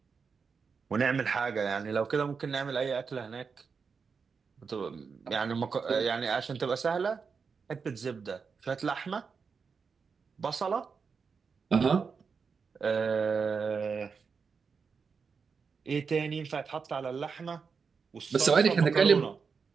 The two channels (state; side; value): quieter; left; 5.5 dB